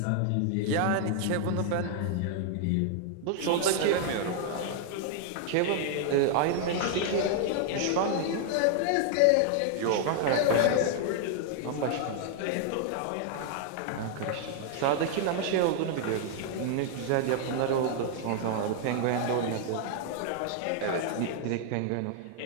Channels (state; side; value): different; both; correlation 0.00